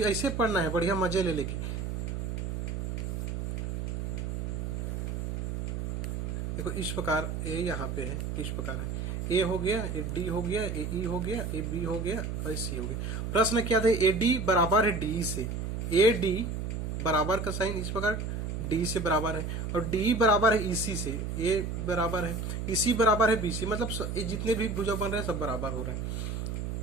पढ़ना है बढ़िया मजे ले लेके। देखो इस प्रकार ए यहाँ पे है, इस प्रकार है, ए हो गया, ए डी हो गया, ए ई हो गया, ए बी हो गया और सी हो गया। प्रश्न क्या था? ए डी बराबर है डी से, ए डी बराबर का साइन इस प्रकार डी से बराबर है, और डी बराबर है इसी से, ए बराबर है इसी बराबर है बी से, मतलब ये जितने भी भुजा बन रहे हैं सब बराबर हो रहे हैं।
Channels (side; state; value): right; noise; hum, 3 dB below the sound